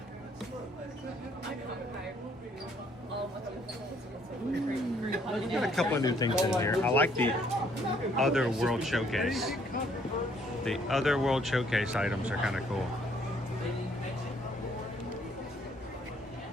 Got a couple of new things in here. I like the Other World Showcase. The Other World Showcase items are kind of cool.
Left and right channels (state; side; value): normal; both; correlation 0.65